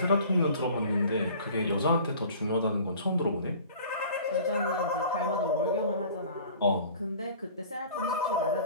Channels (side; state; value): both; inverted; correlation -0.46